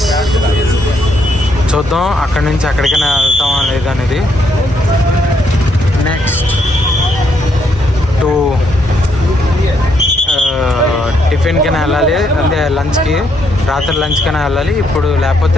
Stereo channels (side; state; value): both; normal; correlation 0.74